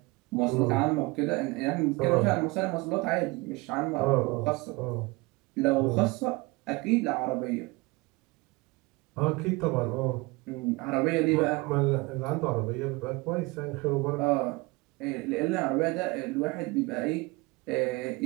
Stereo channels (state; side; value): quieter; left; 24.3 dB